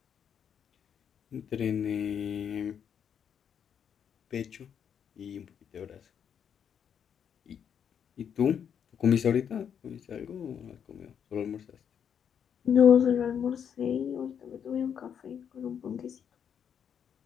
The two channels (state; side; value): quieter; right; 8.1 dB